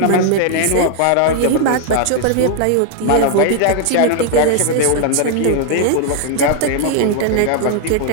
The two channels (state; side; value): different; both; correlation 0.00